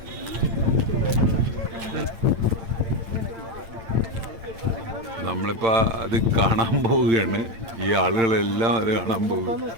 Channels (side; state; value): left; late; 8.8 ms